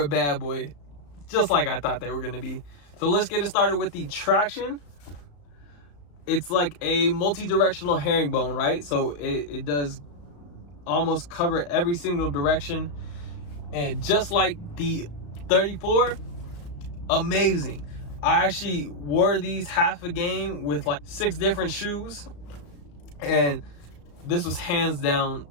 bad boy. Just like I thought they were going to be. So let's get it started with the traction. It's like a multi-directional herringbone, right? So it does almost cover every single direction. And just like the 34, amazing. I actually wore these half a game with like 6 different shoes. And this was hands down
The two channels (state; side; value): late; right; 35 ms